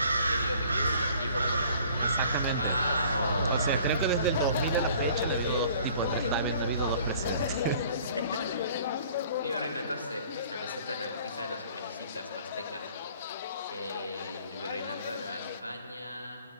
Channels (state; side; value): inverted; both; correlation -0.53